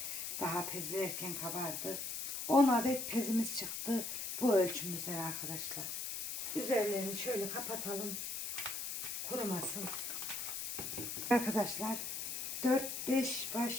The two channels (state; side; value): noise; left; hiss, 3 dB below the sound